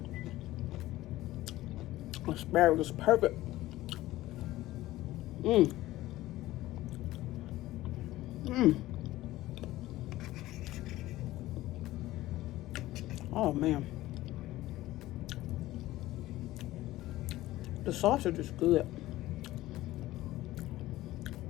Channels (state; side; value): quieter; right; 16.5 dB